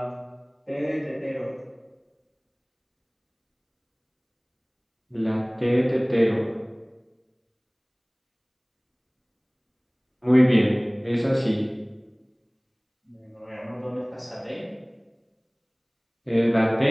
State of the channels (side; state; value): both; identical; correlation 1.00